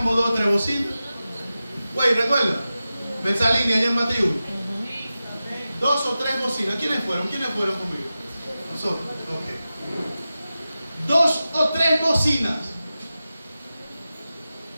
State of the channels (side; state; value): both; inverted; correlation -0.94